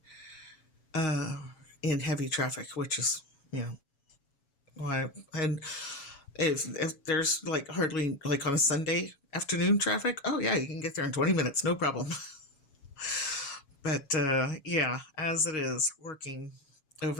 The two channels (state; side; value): late; right; 7.2 ms